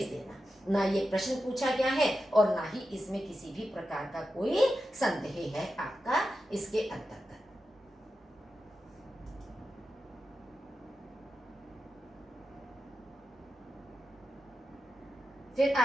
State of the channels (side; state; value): both; normal; correlation 0.90